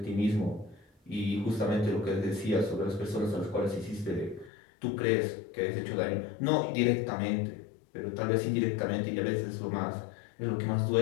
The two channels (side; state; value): right; drops out; at 4.5 s